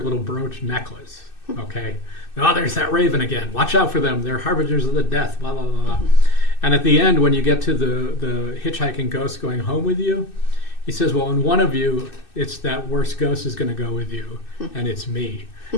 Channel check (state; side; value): late; right; 2.6 ms